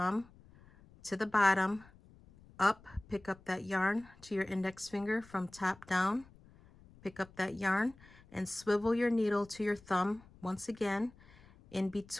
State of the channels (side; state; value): left; noise; rumble, 25 dB below the sound